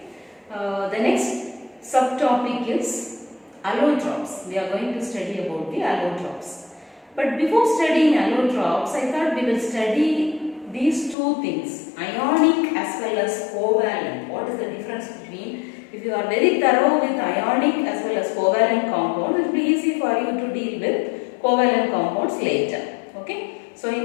The next subtopic is allotropes. We are going to study about the allotropes. But before studying allotropes, I thought we will study these two things, ionic as well as covalent. What is the difference between? If you are very thorough with ionic as well as covalent compounds, it will be easy for you to deal with covalent compounds later. Okay. So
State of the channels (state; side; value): drops out; right; at 11.2 s